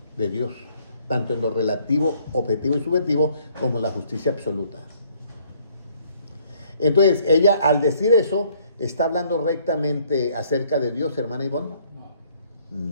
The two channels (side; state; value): both; inverted; correlation -0.64